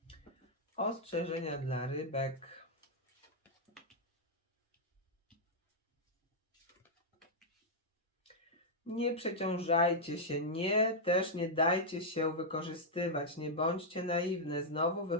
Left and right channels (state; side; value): normal; both; correlation -0.05